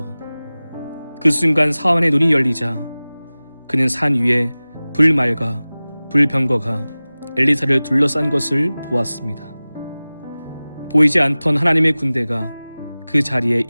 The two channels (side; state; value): both; inverted; correlation -0.98